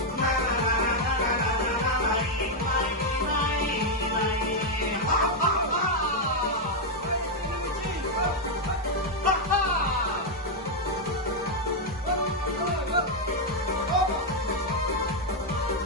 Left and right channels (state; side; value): normal; both; correlation 0.01